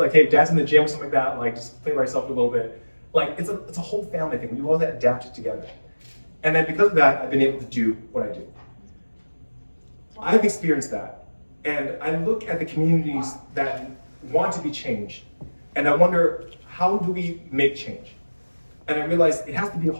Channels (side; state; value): both; inverted; correlation -1.00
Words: hey, dad's in the gym or something like that, like just play by yourself a little bit. Like it's a whole family thing. We all have to adapt it together. And then because of that, I've been able to do what I do. I've experienced that. And I look at the communities that want to be changed, and I wonder, how do we make change? And I realize it has to be a